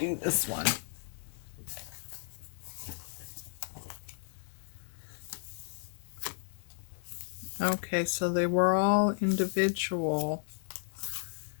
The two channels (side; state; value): right; silent; digital silence